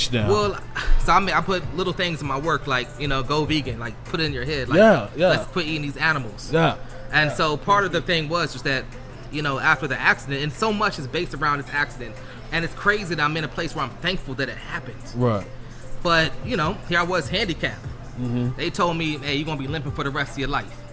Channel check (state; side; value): identical; both; correlation 1.00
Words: now. Well, so I put little things in my work, like, you know, go vegan, like put it in your head, like, Yeah, yeah. let's quit eating these animals. yeah, And so part of the thing was just that, you know, after the accident, and so much is based around this accident, and it's crazy that I'm in a place where I'm thankful that it happened. right. But, you know, here I was handicapped. Mm-hmm. They told me, hey, you're going to be limping for the rest of your life.